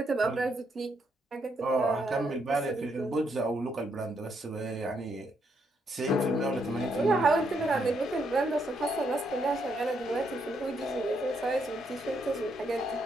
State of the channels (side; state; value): both; normal; correlation 0.76